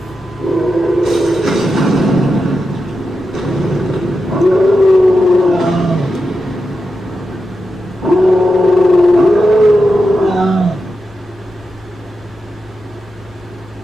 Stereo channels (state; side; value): normal; both; correlation 0.89